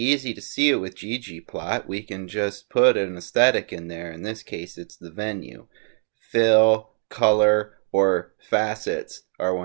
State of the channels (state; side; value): silent; left; digital silence